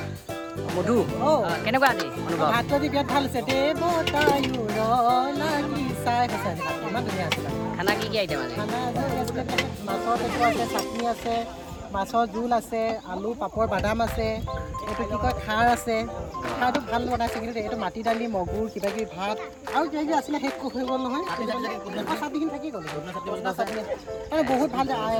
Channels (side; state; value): both; identical; correlation 1.00